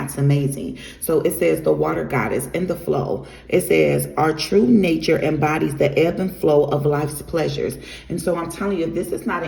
amazing. So it says the water goddess in the flow. It says our true nature embodies the ebb and flow of life's pleasures. And so I'm telling you, if this is not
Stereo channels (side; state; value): both; identical; correlation 1.00